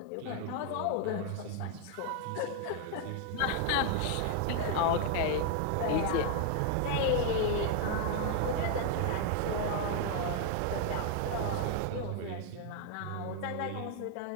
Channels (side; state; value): both; different; correlation 0.01